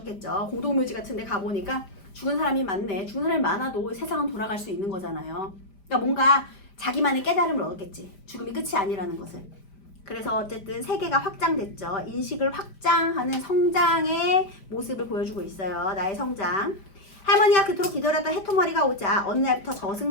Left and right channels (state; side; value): late; right; 5.0 ms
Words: 공동묘지 같은 데 가보니까 죽은 사람이 많네. 죽은 사람이 많아도 세상은 돌아갈 수 있는 거잖아요. 그러니까 뭔가 자기만의 깨달음을 얻었겠지. 죽음이 끝이 아니라는 것을. 그래서 어쨌든 세계가 확장됐죠. 인식을 확장하는 성장의 모습을 보여주고 있어요. 나의 성장. 할머니가 그토록 기다렸던 해토머리가 오자 어느 날부터